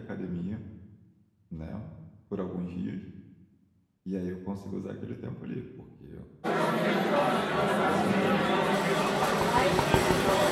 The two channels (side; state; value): both; identical; correlation 1.00